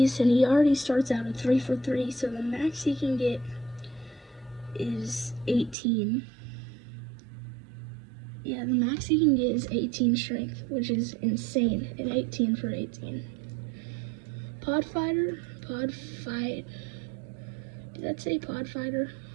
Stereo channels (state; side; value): drops out; left; at 5.8 s